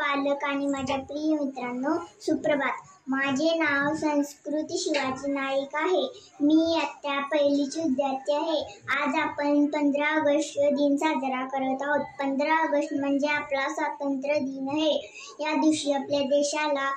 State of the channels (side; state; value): both; identical; correlation 1.00